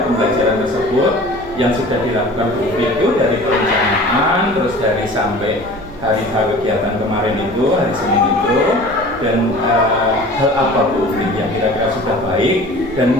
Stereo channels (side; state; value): left; noise; hum, 23 dB below the sound